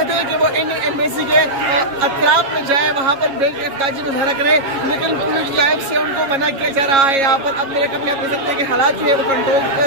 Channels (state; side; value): late; left; 7.3 ms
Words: हैं कि वो इंडियन एम्बेसी के अतराफ में जाए, वहाँ पर बेताजी मुजाहरा करे, लेकिन पुलिस जानिब से उनको मना किया जा रहा है। यहाँ पर अब मेरे कम आप देख सकते हैं कि हालात जो है वो